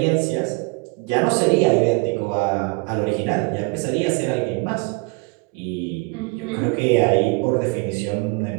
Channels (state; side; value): quieter; left; 29.6 dB